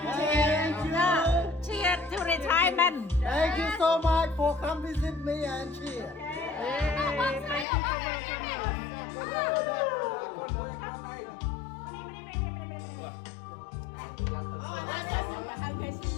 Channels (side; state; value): right; drops out; at 7.7 s